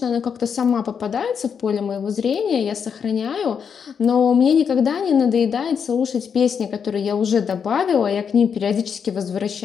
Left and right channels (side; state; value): right; quieter; 6.9 dB